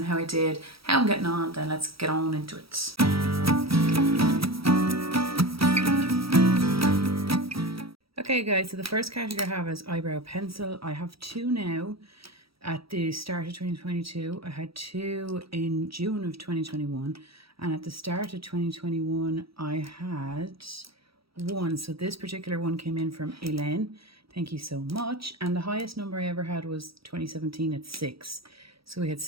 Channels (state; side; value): late; left; 0.76 ms